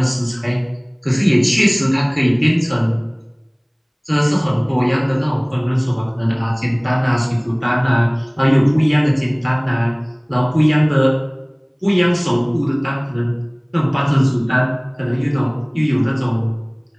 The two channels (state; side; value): identical; both; correlation 1.00